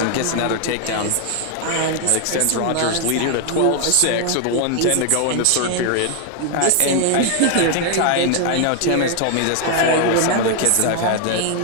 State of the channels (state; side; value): different; both; correlation 0.00